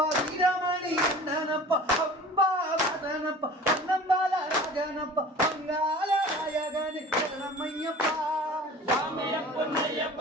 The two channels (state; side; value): normal; both; correlation 0.42